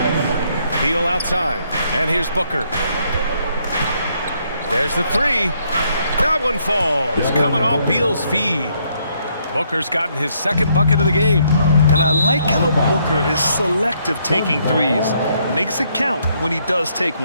Beal outside. And here's Booker. There's the 3. That one falls. Coming off Beal's feed. Booker's gotten his second bucket of the game. And I like how Booker is selective taking threes. Makes it count when he does take one.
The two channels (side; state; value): both; inverted; correlation -0.71